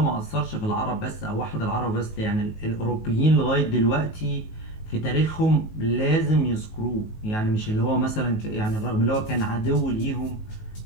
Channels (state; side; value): late; right; 19 ms